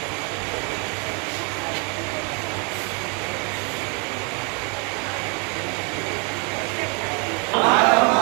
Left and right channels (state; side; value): quieter; left; 34.6 dB